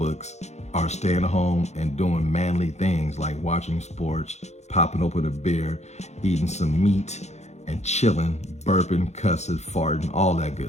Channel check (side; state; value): right; late; 0.32 ms